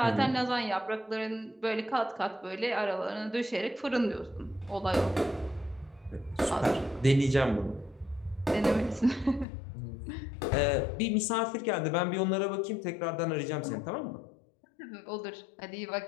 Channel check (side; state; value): right; drops out; at 9.5 s